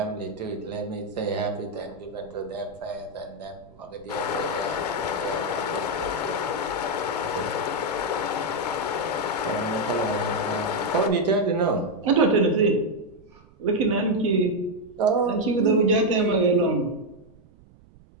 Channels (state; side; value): noise; right; rumble, 26 dB below the sound